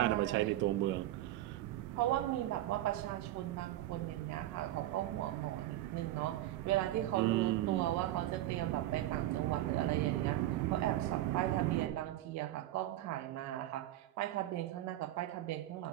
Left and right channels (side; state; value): left; quieter; 14.5 dB